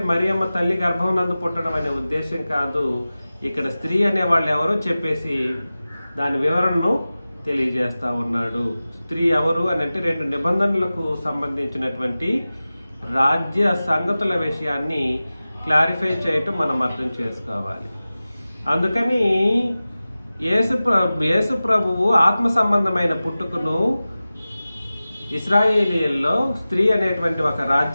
మరియమ్మ తల్లి గర్భం నందు పుట్టడం అనే ఉద్దేశం కాదు. ఇక్కడ స్త్రీ అనే వాళ్ళు ఎవరో చెప్పేసి దాని వివరణను తెలియజేస్తా ఉన్నాడు. స్త్రీ ఎవరు అని అంటే 2 నిబంధనలకు సంబంధించినటువంటి రాజ్య సంగతుల విషయాన్ని క్లారిఫై చేయటం మనం అర్థం చేసుకోవాలి. అందుకని యేసు ప్రభువు ఆత్మ సంబంధమైన పుట్టుకను ఇశ్రాయేలీయుల్లో స్త్రీ అనేటువంటి ఒక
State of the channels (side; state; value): both; inverted; correlation -0.96